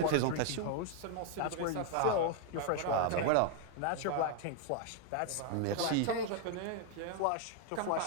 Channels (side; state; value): both; different; correlation 0.00